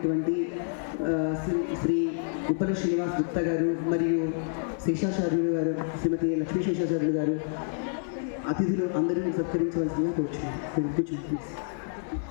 శ్రీ ఉప్పల శ్రీనివాస్ గుప్తా గారు మరియు శేషాచార్యులు గారు, శ్రీమతి లక్ష్మీ శేషాచార్యులు గారు అతిథులు అందరూ సత్కరించవలసిందిగా కూర్చున్నారు. కూర్చోండి.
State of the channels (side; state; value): right; silent; 59 dB below the other